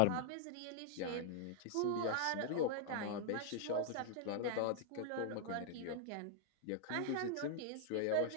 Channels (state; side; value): different; both; correlation 0.00